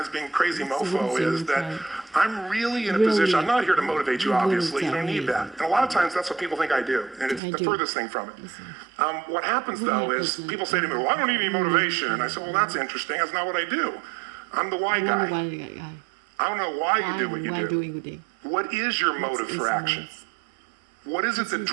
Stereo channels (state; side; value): drops out; left; at 7.4 s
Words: being crazy mofo, is that I'm really in a position, I'm not here to motivate you, obviously. You don't need that. And a lot of times, that's what people think I do, and it's the furthest thing from it. What happens, though, is people say to me, well, I don't need any motivation. And I say, well, that's interesting. That's not what I do. I'm the why guy. I don't know why you do what you do. What is your motive for action? What is it that